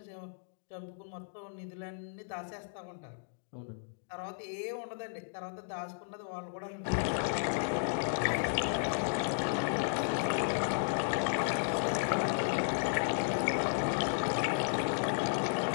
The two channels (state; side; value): silent; right; digital silence